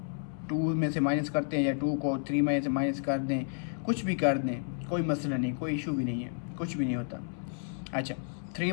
2 में से माइनस करते हैं या 2 को 3 में से माइनस कर दें, कुछ भी कर दें, कोई मसला नहीं, कोई इशू भी नहीं है, कुछ भी नहीं होता। अच्छा,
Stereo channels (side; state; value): right; silent; 57 dB below the other